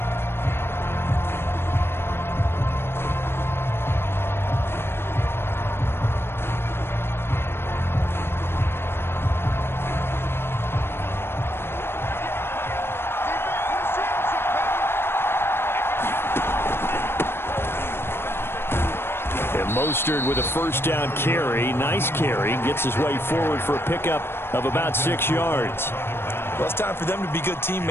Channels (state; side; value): late; right; 0.11 ms